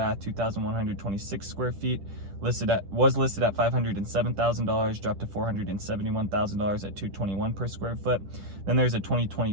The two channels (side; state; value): left; late; 10 ms